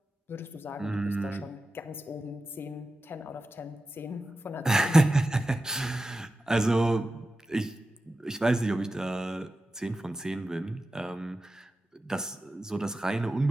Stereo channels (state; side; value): normal; both; correlation 0.92